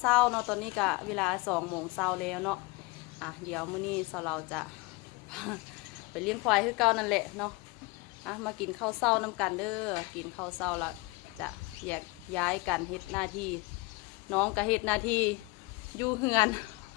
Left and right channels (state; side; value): quieter; right; 25.2 dB